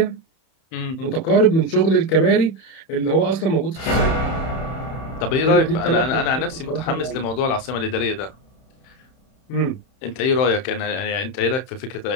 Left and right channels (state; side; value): late; right; 31 ms